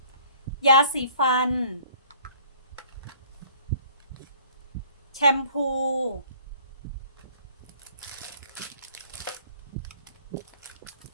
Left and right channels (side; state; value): both; inverted; correlation -0.53